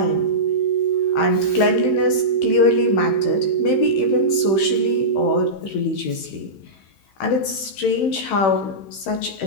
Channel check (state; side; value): late; right; 16 ms